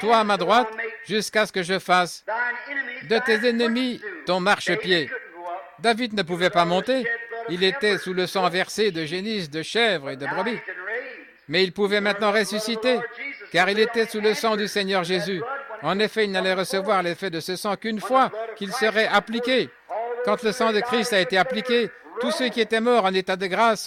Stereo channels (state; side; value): identical; both; correlation 1.00